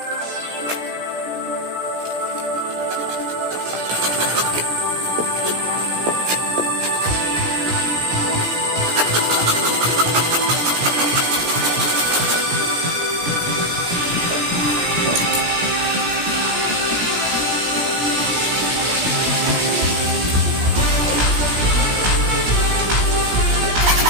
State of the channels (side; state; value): left; late; 17 ms